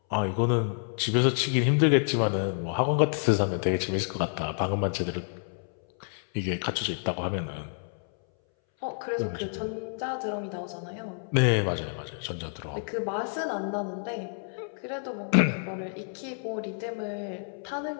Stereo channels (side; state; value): right; silent; 59 dB below the other